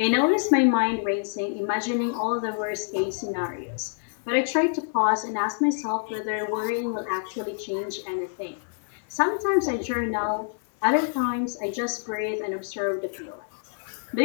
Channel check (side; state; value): right; silent; digital silence